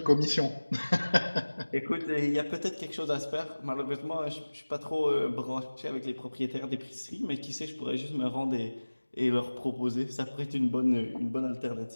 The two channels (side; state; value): both; inverted; correlation -1.00